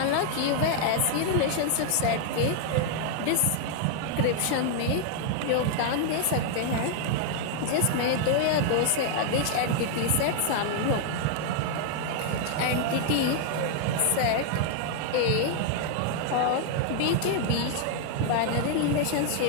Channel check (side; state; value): both; different; correlation 0.00